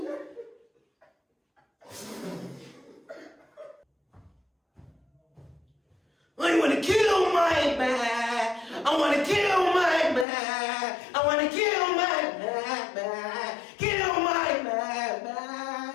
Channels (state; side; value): drops out; right; at 10.2 s